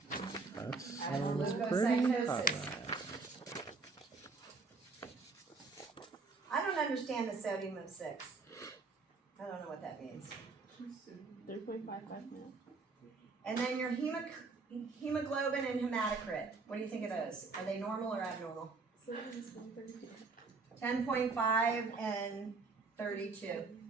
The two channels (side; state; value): left; quieter; 4.2 dB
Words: That sounds pretty Leukocytosis. hot. I don't understand the sodium of 6. I don't know what that means. 3.55 now. And then your hemoglobin and hematocrit. What do you think of those? Are they normal or abnormal? 10.5 and 32.